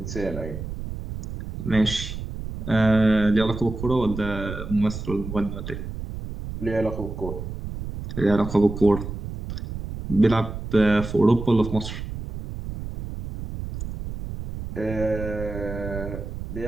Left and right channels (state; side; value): noise; right; rumble, 8 dB below the sound